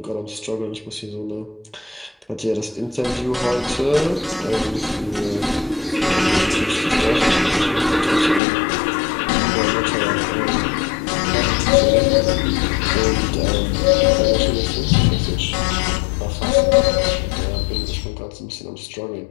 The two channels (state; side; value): drops out; right; at 8.4 s